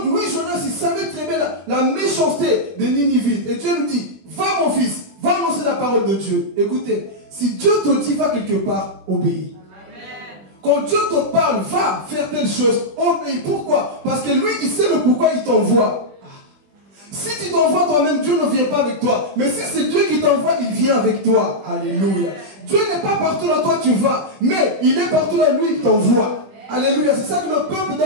lui, Jonas, il savait très bien la méchanceté des Ninivites. Et Dieu nous dit, va mon fils, va annoncer la parole de Dieu. Écoutez, si Dieu te dit, va quelque part, obéis. Quand Dieu te parle, va faire telle chose, obéis. Pourquoi? Parce que lui, il sait le pourquoi il t'envoie. Si tu t'envoies toi-même, Dieu ne vient pas avec toi. Mais si c'est Dieu qui t'envoie, il vient avec toi. Alléluia. Dieu n'est pas partout là, toi tu vas. Mais il est partout là, lui, il t'envoie. Alléluia. C'est ça que le peuple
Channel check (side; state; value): left; late; 21 ms